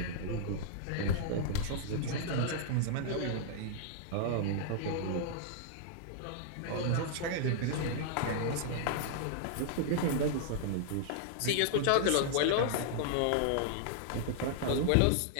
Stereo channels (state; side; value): different; both; correlation -0.01